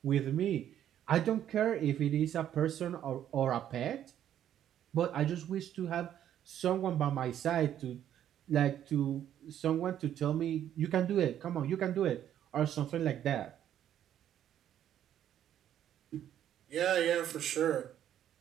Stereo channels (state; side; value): quieter; left; 10.7 dB